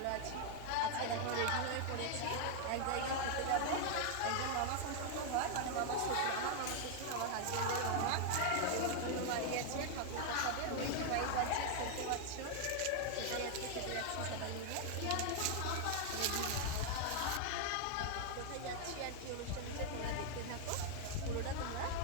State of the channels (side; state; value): both; different; correlation 0.00